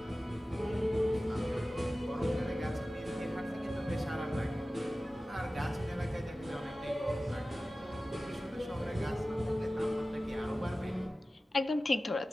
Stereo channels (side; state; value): both; normal; correlation 0.96